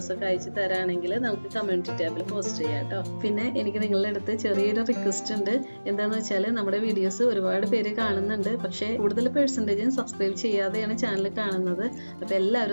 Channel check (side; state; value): both; inverted; correlation -1.00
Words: അയച്ചു തരാണെങ്കിൽ നമുക്ക് കമ്മ്യൂണിറ്റി ടാബിൽ പോസ്റ്റ് ചെയ്യാം കേട്ടോ. പിന്നെ എനിക്ക് നിങ്ങളുടെ അടുത്ത് ചെറിയൊരു റിക്വസ്റ്റ് ഉണ്ട്. എന്താണെന്ന് വെച്ചാൽ നമ്മുടെ വീഡിയോസ് ഒരുപാട് പേര് കാണുന്നുണ്ട്, പക്ഷേ കൂടുതൽ പെർസെൻറ്റേജും സബ്സ്ക്രൈബ് ചെയ്യാതെയാണ് ചാനൽ കാണുന്നത്. അപ്പോൾ